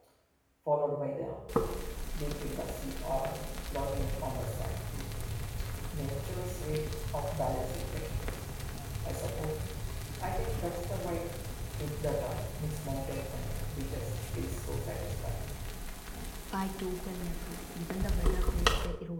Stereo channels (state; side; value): identical; both; correlation 1.00